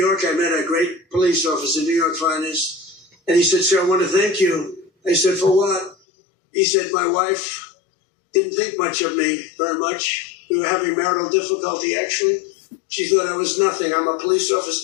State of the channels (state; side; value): drops out; right; at 6.0 s